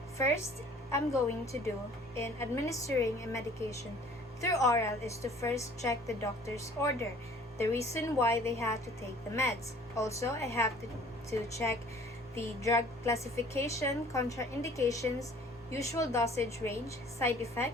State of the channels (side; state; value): both; normal; correlation 0.52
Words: first, I'm going to do in administering a medication through oral is to first check the doctor's order, the reason why they have to take the meds. Also, I have to check the drug classification, contraindications, usual dosage range, side